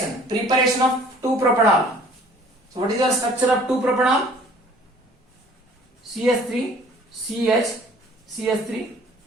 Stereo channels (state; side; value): normal; both; correlation 0.53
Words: preparation of 2-propanol. So what is your structure of 2-propanol? CH3, CH, CH3,